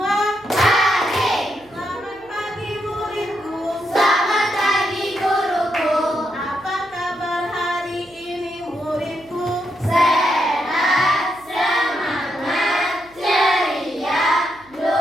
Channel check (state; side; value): noise; right; hum, 29 dB below the sound